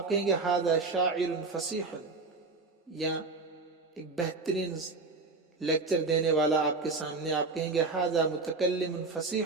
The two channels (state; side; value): quieter; left; 3.8 dB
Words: کہیں گے ھذا شاعر فصیح، یا ایک بہترین لیکچر دینے والا آپ کے سامنے، آپ کہیں گے ھذا متکلم